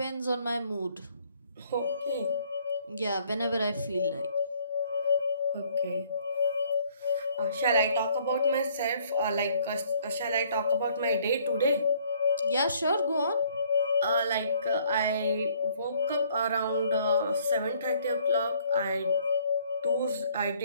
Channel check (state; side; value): inverted; both; correlation -0.62